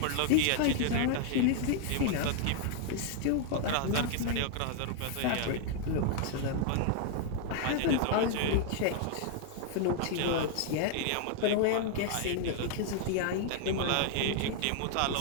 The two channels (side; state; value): both; different; correlation 0.00